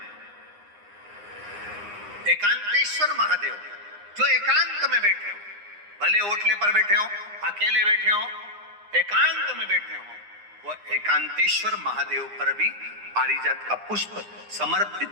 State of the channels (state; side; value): late; left; 9.8 ms